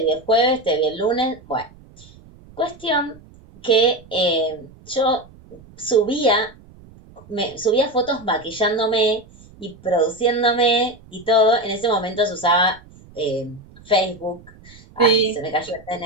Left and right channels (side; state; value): right; noise; rumble, 24 dB below the sound